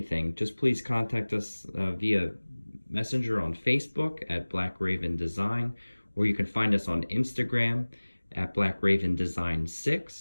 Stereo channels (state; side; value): inverted; both; correlation -1.00